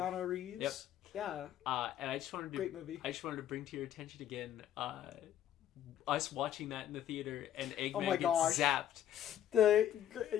Reeves? Yep. Yeah. And I just wanted to... Great movie. I just wanted to bring to your attention again, us watching that in the theater, and Eggman gets zapped.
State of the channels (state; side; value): quieter; right; 11.0 dB